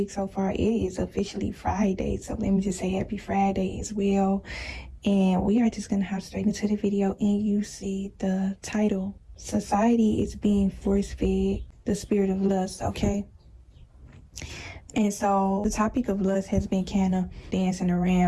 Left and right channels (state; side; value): identical; both; correlation 1.00